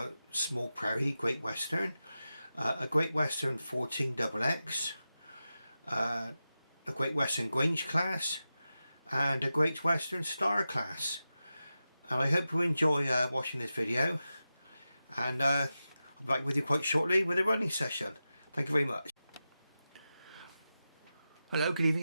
Small Prairie Great Western, a Great Western 14XX, a Great Western Grange class, and a Great Western Star class. And I hope you enjoy watching this video, and I'll be back with you quite shortly with a running session. Thank you very much. Hello, good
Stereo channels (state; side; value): inverted; both; correlation -0.92